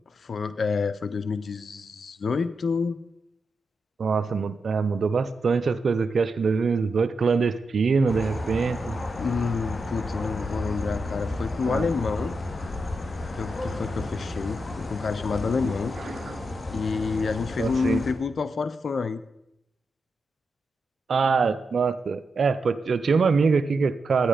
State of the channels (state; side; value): normal; both; correlation 0.86